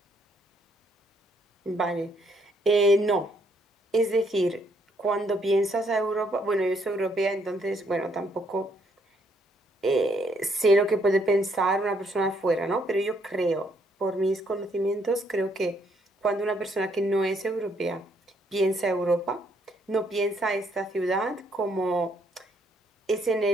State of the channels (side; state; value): both; normal; correlation 0.70